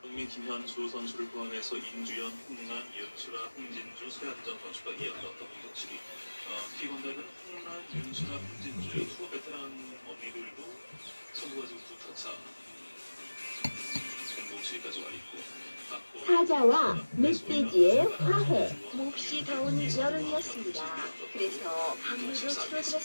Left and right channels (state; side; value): inverted; both; correlation -1.00